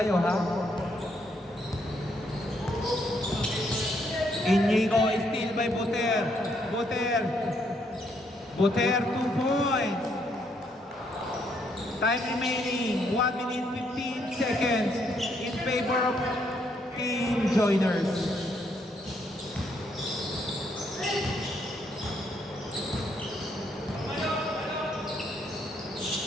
ha. Inigo is still by Buter. Buter 2 points. Time remaining 1 minute 15 seconds in favor of Team Joiners.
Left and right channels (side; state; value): both; normal; correlation 0.73